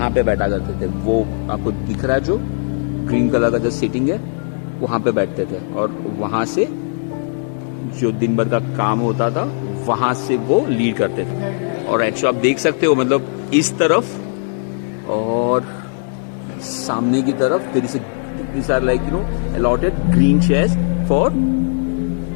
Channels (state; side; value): silent; right; digital silence